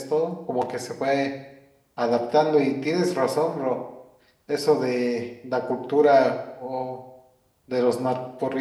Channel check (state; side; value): identical; both; correlation 1.00